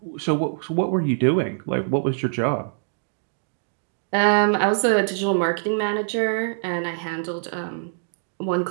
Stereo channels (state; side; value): silent; left; digital silence